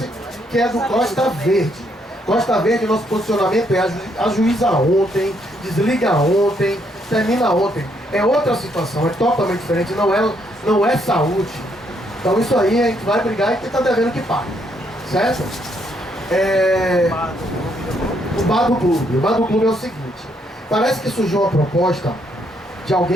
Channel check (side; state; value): both; normal; correlation 0.73